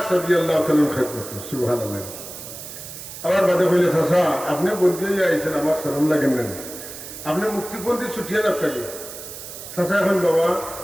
রাদিয়াল্লাহু তাআলার খেদমতে সুবহানাল্লাহ। আবার বাদে কইলে চাচা আপনি বন্দী হয়ে আইছেন, আমার শরম লাগেন না, আপনি মুক্তিপন্থী ছুটিয়ে রাখতেন। চাচা এখন বাবা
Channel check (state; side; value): noise; right; hiss, 12 dB below the sound